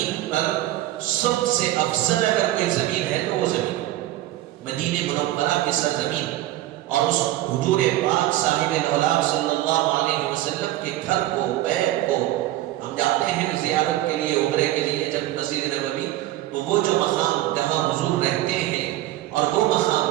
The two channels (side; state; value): left; quieter; 15.1 dB